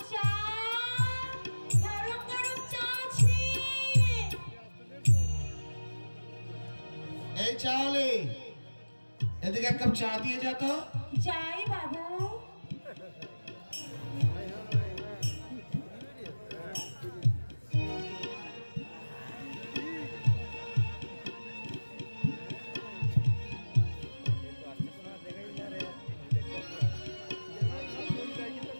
চা গরম গরম চা আছে এই চালে এদিকে এক কাপ চা দিয়ে যা তো। যাই বাবু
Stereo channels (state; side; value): inverted; both; correlation -1.00